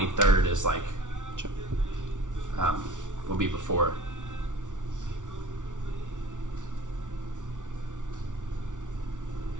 is like will be before.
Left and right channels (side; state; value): left; late; 0.87 ms